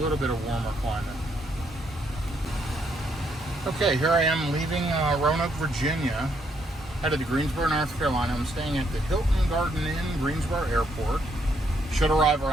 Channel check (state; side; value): normal; both; correlation 0.73